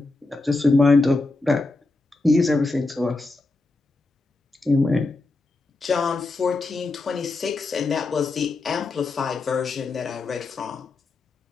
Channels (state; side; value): quieter; right; 3.3 dB